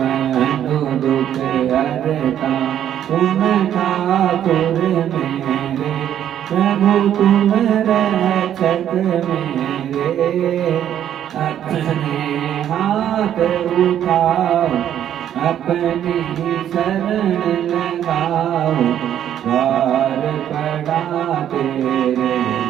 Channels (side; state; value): left; quieter; 10.4 dB